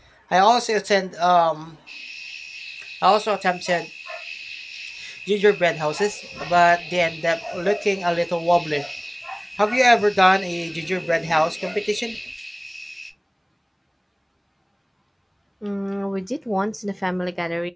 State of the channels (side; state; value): both; identical; correlation 1.00